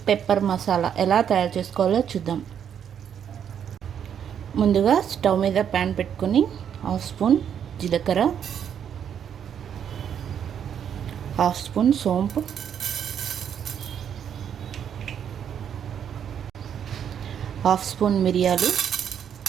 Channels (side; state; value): left; quieter; 8.6 dB